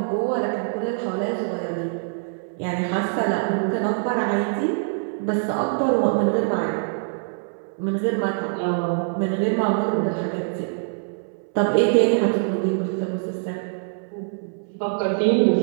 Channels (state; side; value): silent; left; 63 dB below the other